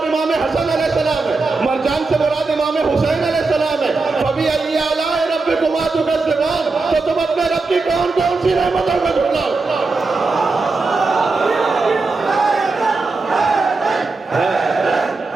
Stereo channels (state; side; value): quieter; left; 3.8 dB